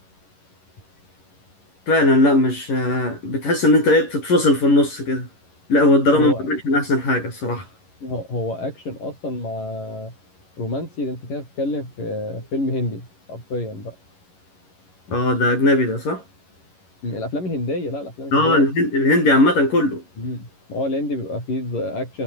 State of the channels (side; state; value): right; late; 11 ms